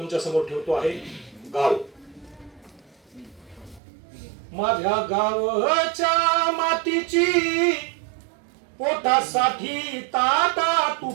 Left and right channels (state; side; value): drops out; left; at 3.8 s